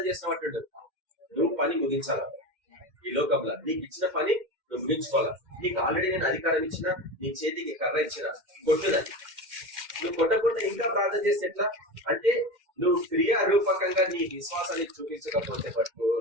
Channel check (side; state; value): left; late; 2.1 ms